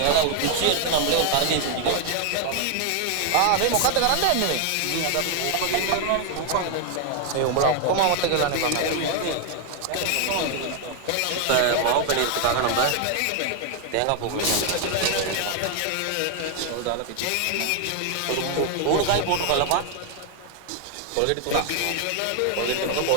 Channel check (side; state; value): both; different; correlation 0.00